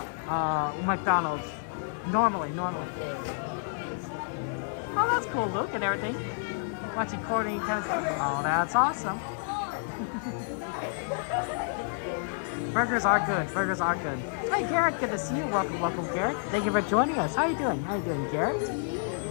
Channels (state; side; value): silent; right; 58 dB below the other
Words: McDonald's. Normally. Oh, that's cool, Luke, and everything. Watching Courtney tennis. Oh, that's awesome. Burgers are good. Hey, Garrett, good to see you. Welcome, Garrett. Thank you for joining us. How you doing, Garrett?